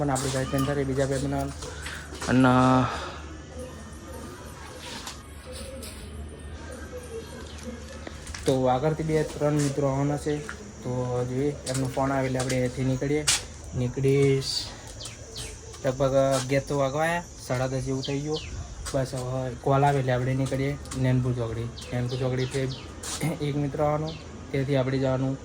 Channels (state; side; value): identical; both; correlation 1.00